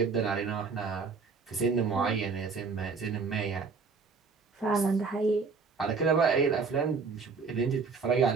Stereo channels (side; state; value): left; quieter; 4.9 dB